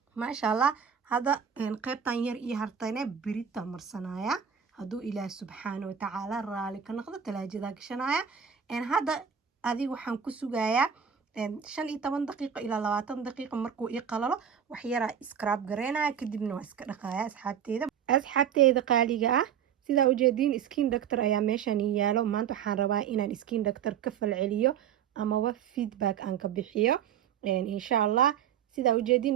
maasha Allah hada qaybtan yar iyo hartayna birita marsanaya hadduu ilaah subxaana watacaala raali ka noqdo talaajadaa gashanaya hadda adiga waxaan ku sugayaa 15 daqiiqo ilaa 20 daqiiqo markuu ii qalalo wax yaraa scrub gareynaya kadibna waa iska dhaqaya asxaabteeda qaaliga ah sidaa ujeediin skin doctor ayaa meeshan yaalo maanta waxaan rabaa inaan skin doctor ka falceliyo amaba feedback aan ka bixiyo insha allah sidaa ujeediin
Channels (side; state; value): left; quieter; 8.4 dB